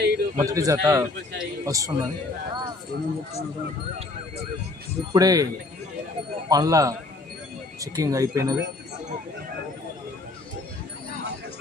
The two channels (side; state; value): right; quieter; 3.1 dB